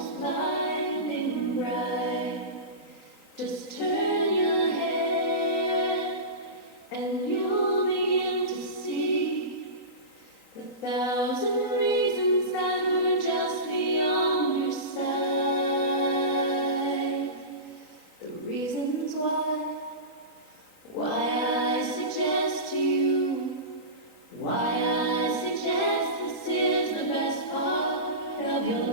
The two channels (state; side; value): late; right; 3.9 ms